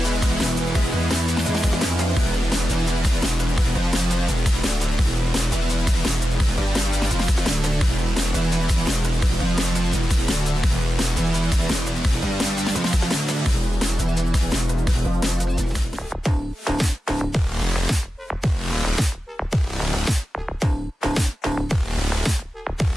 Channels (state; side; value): normal; both; correlation 0.92